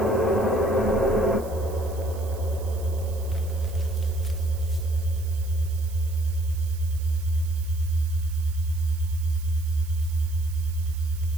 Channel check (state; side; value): noise; right; hiss, 19 dB below the sound